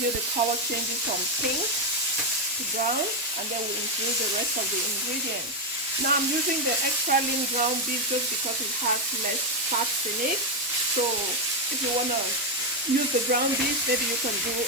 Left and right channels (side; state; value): both; normal; correlation 0.04